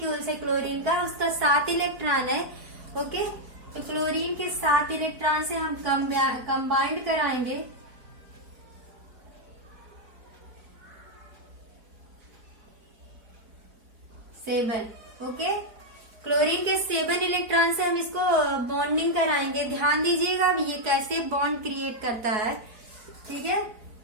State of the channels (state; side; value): late; left; 4.5 ms